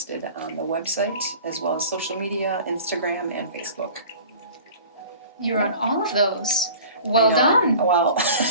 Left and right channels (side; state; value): both; inverted; correlation -0.43